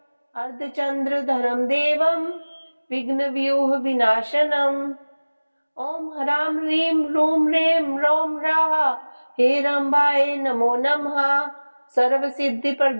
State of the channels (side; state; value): both; inverted; correlation -1.00